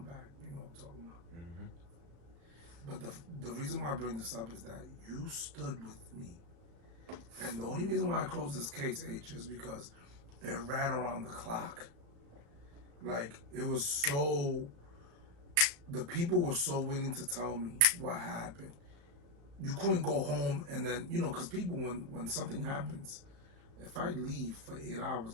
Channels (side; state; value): left; late; 36 ms